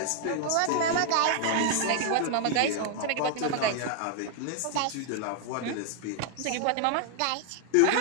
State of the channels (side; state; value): both; different; correlation 0.00